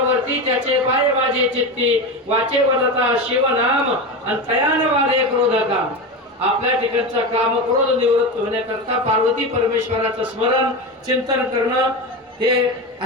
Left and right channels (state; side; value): normal; both; correlation 0.21